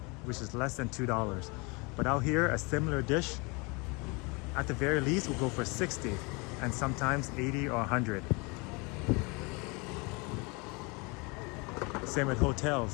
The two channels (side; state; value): right; quieter; 28.8 dB